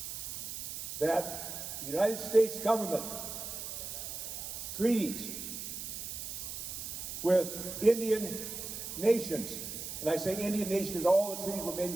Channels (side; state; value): right; noise; hiss, 7 dB below the sound